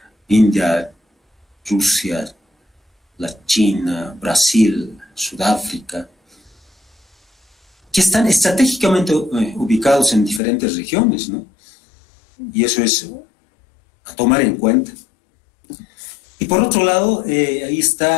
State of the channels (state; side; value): drops out; right; at 10.4 s